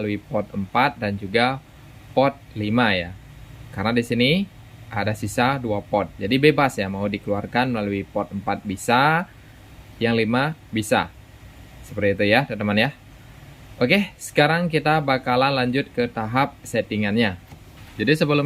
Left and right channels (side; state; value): both; identical; correlation 1.00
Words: port 4 dan juga port 5 ya. Karena di sini ada sisa 2 port. Jadi bebas ya, mau dikeluarkan melalui port 4 bisa, yang 5 bisa. Seperti itu ya teman-teman ya. Oke, sekarang kita bakalan lanjut ke tahap settingannya. Jadi